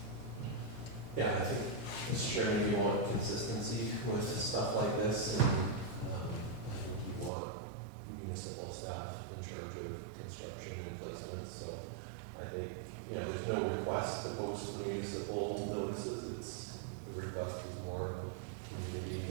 Yeah, I think, Mr. Chairman, you want consistency with stuff like this, and I think you want municipal staff in charge of construction and placement, so I think, you know, there's no request to post the municipal notices, it's, the request is more of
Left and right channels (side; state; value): left; drops out; at 7.3 s